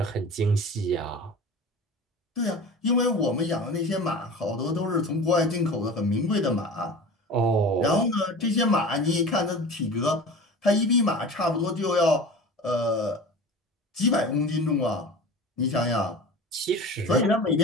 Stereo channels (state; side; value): normal; both; correlation 0.36